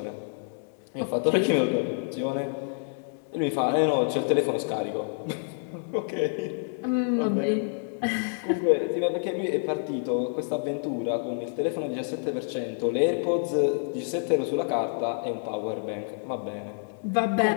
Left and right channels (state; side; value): silent; right; 59 dB below the other